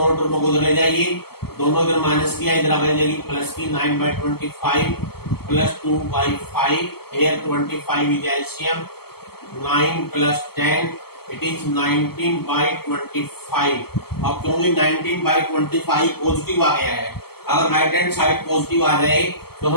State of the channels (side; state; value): right; late; 0.96 ms